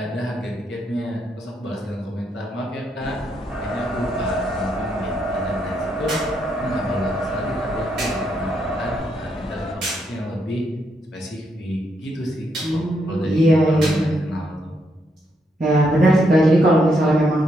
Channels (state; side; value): normal; both; correlation 0.78